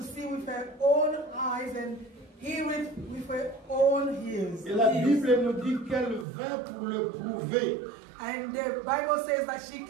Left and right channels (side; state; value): left; drops out; at 6.2 s